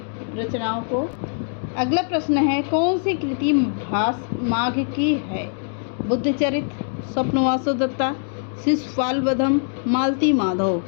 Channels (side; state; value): right; silent; digital silence